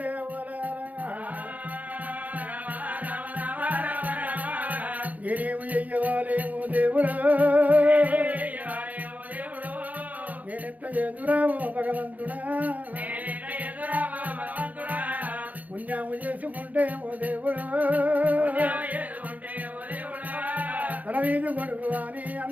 నేనేమి చెయ్యవాలేమో దేవుడా నేనెట్లా ఎదురామో భగవంతుడా పుణ్యము చేసుకుంటే ఓ దేవుడా తల వీధి కొడుకు అని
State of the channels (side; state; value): left; late; 0.077 ms